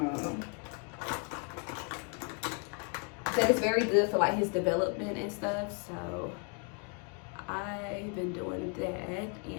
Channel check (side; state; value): right; quieter; 37.2 dB